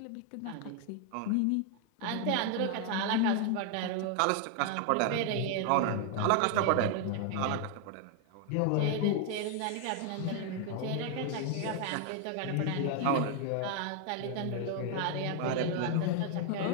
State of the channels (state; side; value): different; both; correlation 0.00